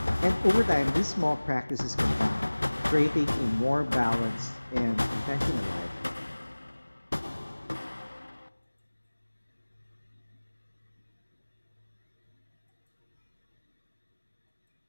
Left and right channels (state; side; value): inverted; both; correlation -1.00